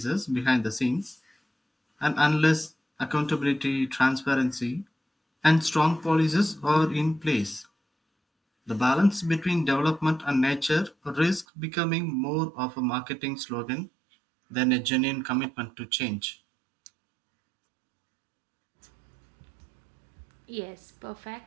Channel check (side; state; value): left; drops out; at 11.5 s